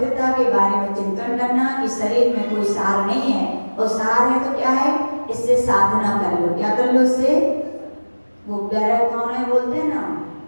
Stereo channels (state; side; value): inverted; both; correlation -1.00